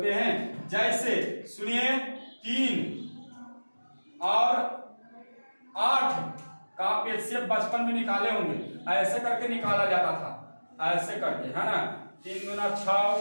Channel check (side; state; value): both; inverted; correlation -1.00